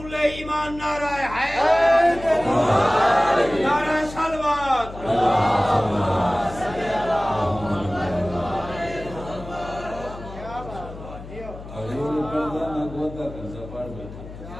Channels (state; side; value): noise; left; hum, 14 dB below the sound